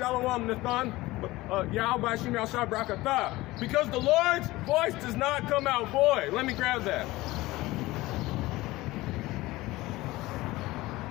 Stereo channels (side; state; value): right; quieter; 19.1 dB